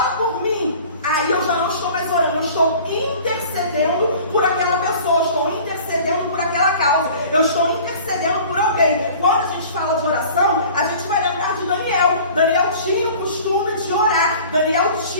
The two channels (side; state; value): both; inverted; correlation -0.45